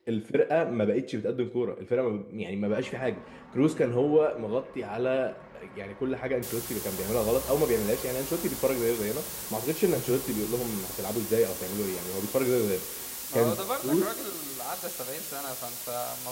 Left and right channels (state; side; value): identical; both; correlation 1.00